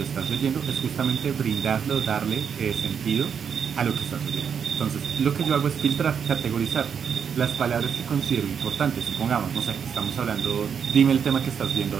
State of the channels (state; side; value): quieter; left; 7.2 dB